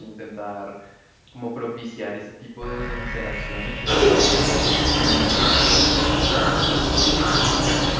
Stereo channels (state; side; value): identical; both; correlation 1.00